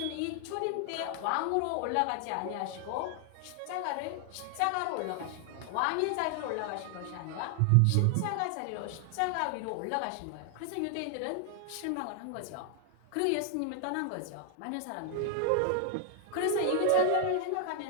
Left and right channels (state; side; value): different; both; correlation 0.00